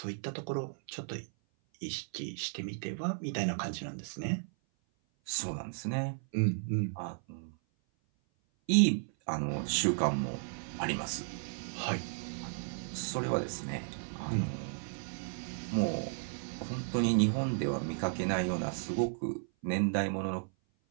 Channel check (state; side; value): silent; left; 55 dB below the other